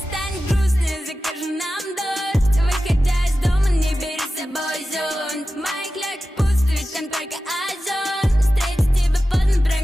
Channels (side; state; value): both; normal; correlation 0.94